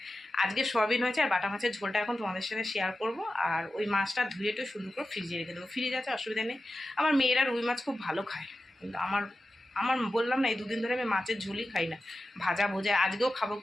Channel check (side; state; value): both; normal; correlation 0.93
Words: আজকে সয়াবিন হয়েছে আর বাটা মাছের ঝোলটা এখন তোমাদের সাথে শেয়ার করব। আর ওই মাছটা ধুয়ে একটু সুন্দর করে ফ্রিজে রেখে দেবো। ফ্রিজ আছে, অসুবিধা নেই। আমার মেয়েরা রুই মাছ খুব ভালো খায়, কিন্তু আমার আমার বললাম না, এই দুদিন ধরে আমি মাছের ঝোলই খাই না, ভাজা ভোজা। আজকেও খাবো